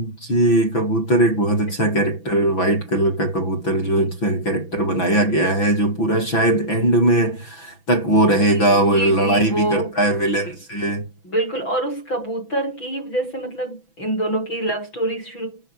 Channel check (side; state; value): right; late; 6.0 ms